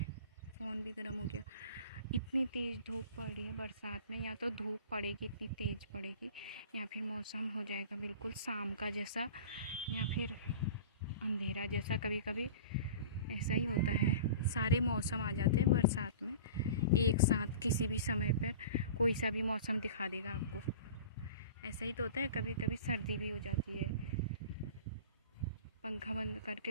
फ़ोन भी गर्म हो गया। इतनी तेज़ धूप पड़ रही है बरसात में, या तो धूप पड़ेगी इतनी तेज़ पड़ेगी, या फिर मौसम हो जाएगा बिल्कुल शाम का जैसा, या फिर अंधेरा जैसा, कभी कभी ऐसा ही होता है। सारे मौसम आ जाते हैं बरसात में एक साथ, किसी भी समय पर कोई सा भी मौसम दिखा देगा आपको, ऐसा ही तो होता है। कभी कभी सर्दी भी हो जाती है, पंखा बंद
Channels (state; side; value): inverted; both; correlation -0.38